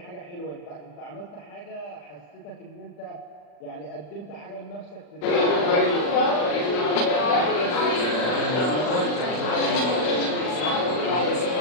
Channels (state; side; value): late; right; 40 ms